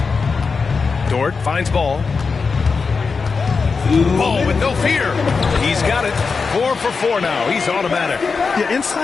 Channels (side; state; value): right; quieter; 4.9 dB